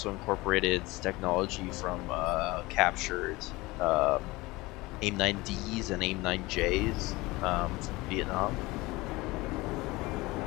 incorporated technology from captured AIM 9Ds and AIM 9Js from Vietnam.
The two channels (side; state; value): right; quieter; 21.6 dB